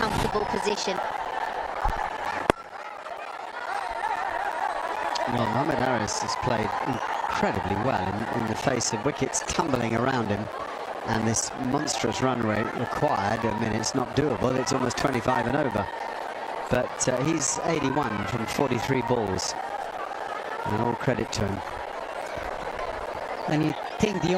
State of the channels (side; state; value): both; identical; correlation 1.00